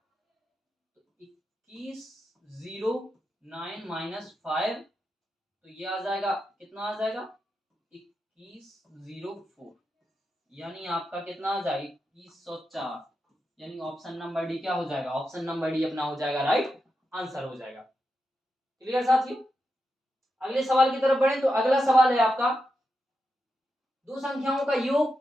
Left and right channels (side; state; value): both; normal; correlation 0.87